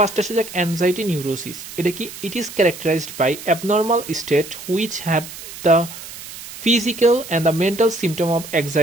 আসে যাক anxiety neurosis. এটা কি? It is characterized by abnormal state which have the physical and the mental symptom of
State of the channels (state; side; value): noise; right; hiss, 13 dB below the sound